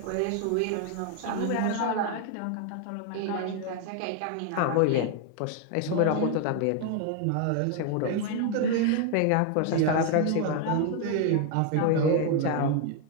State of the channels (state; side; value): different; both; correlation 0.01